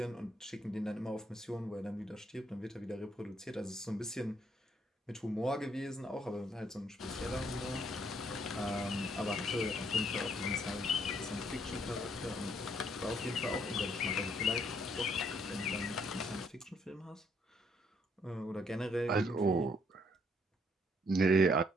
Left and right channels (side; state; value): both; normal; correlation 0.69